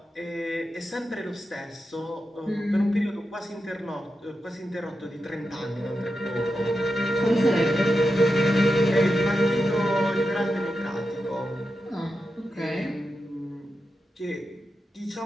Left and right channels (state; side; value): normal; both; correlation 0.88